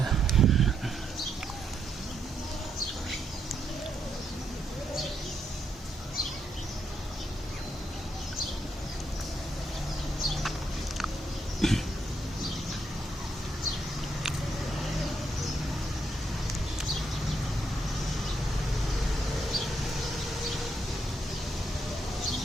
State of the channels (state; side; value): normal; both; correlation 0.78